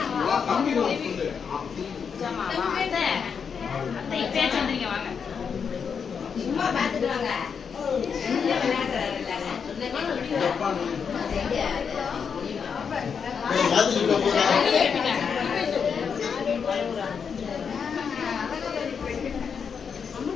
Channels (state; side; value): quieter; right; 6.5 dB